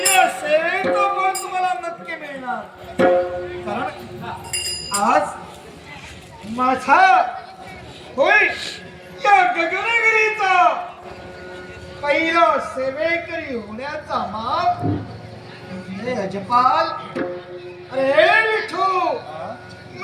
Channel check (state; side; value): identical; both; correlation 1.00